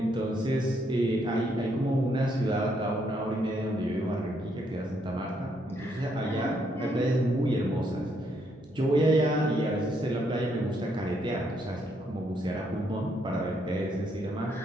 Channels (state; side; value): noise; right; hum, 26 dB below the sound